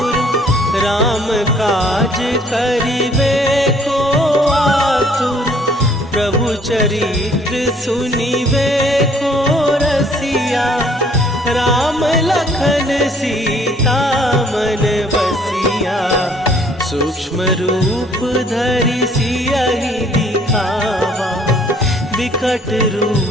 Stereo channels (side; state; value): both; normal; correlation 0.60